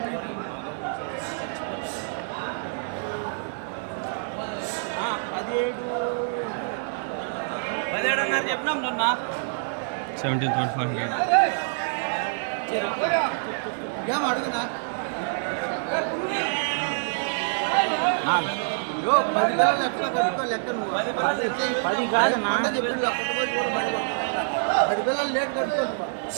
17 అన్నారు చెప్పినాం చూన్నా 17,500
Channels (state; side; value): silent; left; 61 dB below the other